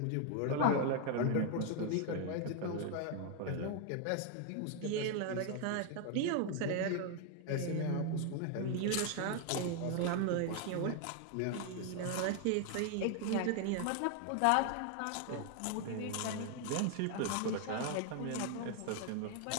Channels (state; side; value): different; both; correlation 0.00